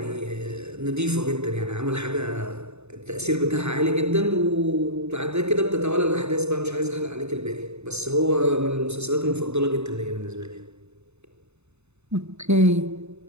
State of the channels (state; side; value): late; left; 0.81 ms